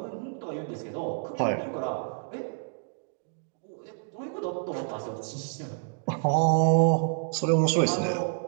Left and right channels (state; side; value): silent; left; digital silence